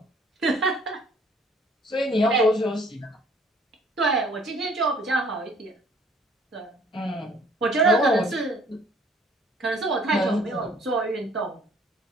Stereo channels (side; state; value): both; normal; correlation 0.57